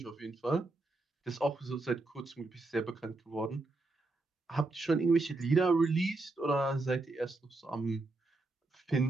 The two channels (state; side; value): quieter; left; 3.1 dB